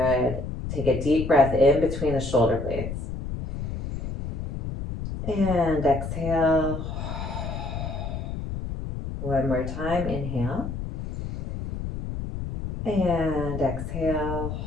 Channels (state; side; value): noise; left; rumble, 5 dB below the sound